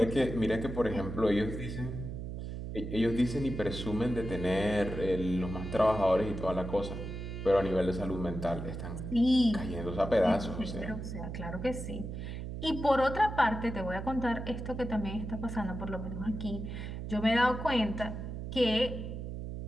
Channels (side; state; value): right; noise; hum, 6 dB below the sound